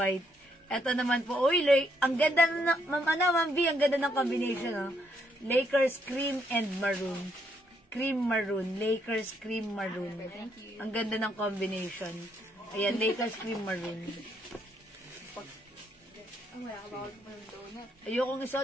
Ito naman po. Uy, ang ganda na, Ma'am B, ang ganda ng combination, oh. Lakers cream and maroon. Cream maroon. Lakers cream maroon. Ang ganda ng combination. Ayan, Lakers cream maroon. Ayokong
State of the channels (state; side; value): normal; both; correlation 0.74